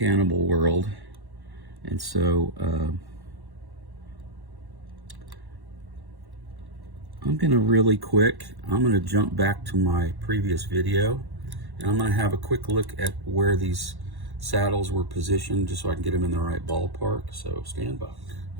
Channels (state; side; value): late; left; 1.1 ms